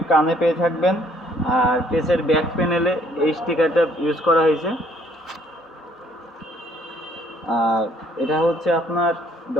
কানে পেয়ে থাকবেন, আর পেসের ব্যাক প্যানেলে এই স্টিকারটা ইউজ করা হয়েছে। আর এটা হচ্ছে আপনার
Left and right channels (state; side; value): normal; both; correlation 0.63